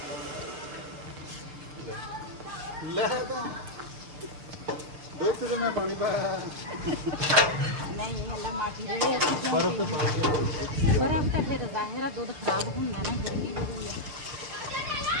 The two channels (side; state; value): left; late; 6.7 ms